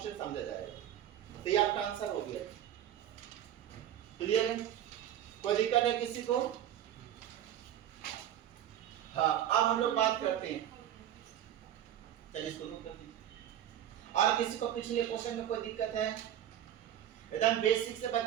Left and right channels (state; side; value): quieter; left; 11.1 dB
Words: समझा जाएगा। तो ये आपका आंसर हो गया, क्लियर है, कोई दिक्कत है किसी को। हाँ, अब हम लोग बात करते हैं, चलिए इसको नोट कर दीजिए। और किसी को पिछले क्वेश्चन में कोई दिक्कत है, एकदम बेसिक से